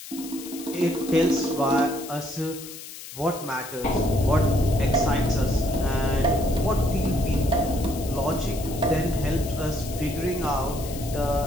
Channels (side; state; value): left; noise; hiss, 13 dB below the sound